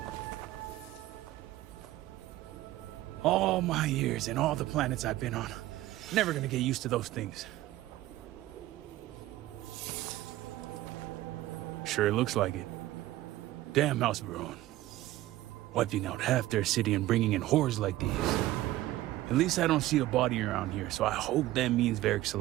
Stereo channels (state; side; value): quieter; left; 15.7 dB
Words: All my years and all the planets I've been on. Never gonna get used to those things. Sure looks like it. Damn House Veron. Wiping out half their city and bringing in horrors like these. At least I don't see a body around here, so I hope that means Varric's